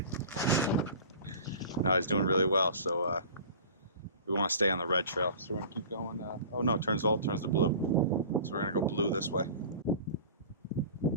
No, he's doing really well. So we want to stay on the red trail. So we're gonna keep going. Oh no, it turns to blue. So we're gonna go blue this way.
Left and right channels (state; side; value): inverted; both; correlation -0.40